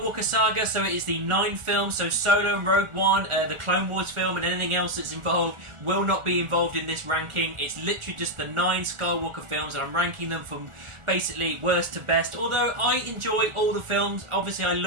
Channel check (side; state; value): left; late; 1.4 ms